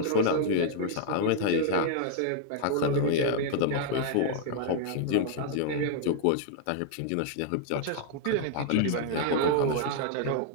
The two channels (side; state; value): both; different; correlation 0.00